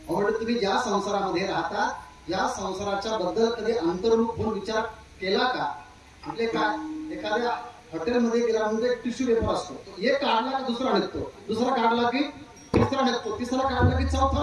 तुम्ही ज्या संसारामध्ये राहता या संसाराच्या बद्दल कधी अंतर्मुख होऊन विचार केला का? म्हणजे काय, एखाद्या हॉटेलमध्ये गेला म्हणजे एक टिश्यू पेपर असतो. एक काढला की दुसरा निघतो, दुसरा काढला की तिसरा निघतो, तिसरा काढला की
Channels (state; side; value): identical; both; correlation 1.00